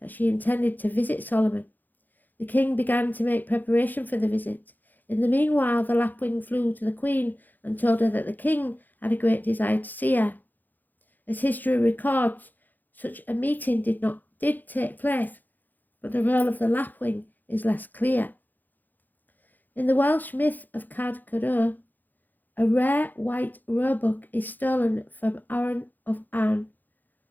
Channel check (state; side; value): late; right; 0.086 ms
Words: she intended to visit Solomon. The king began to make preparation for the visit. In the meanwhile, the lapwing flew to the queen and told her that the king had a great desire to see her. As history records, such a meeting did take place, but the role of the lapwing is less clear. In the Welsh myth of Cad Codor, a rare white roebuck is stolen from Arran of Arn,